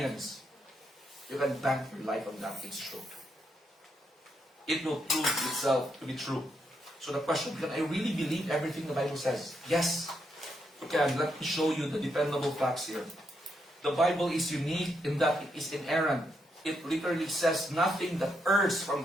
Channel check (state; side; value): normal; both; correlation 0.79